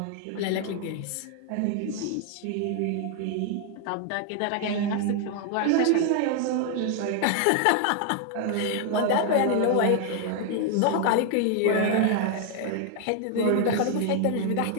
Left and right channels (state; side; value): different; both; correlation 0.00